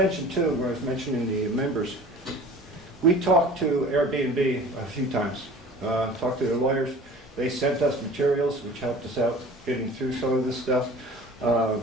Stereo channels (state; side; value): normal; both; correlation 0.44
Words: too, when I was mentioning the members, we talked to Airbnb a few times, talked to their lawyers. They sent us materials which helped us out getting through some of this stuff.